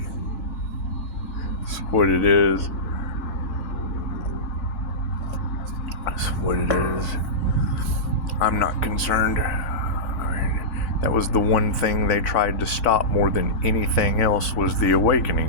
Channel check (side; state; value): right; late; 4.6 ms